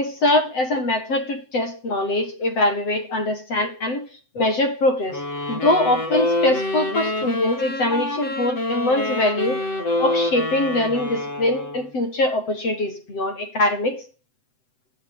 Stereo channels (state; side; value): late; right; 7.8 ms